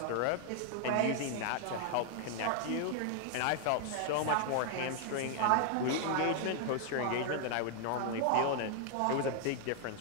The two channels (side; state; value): both; different; correlation 0.00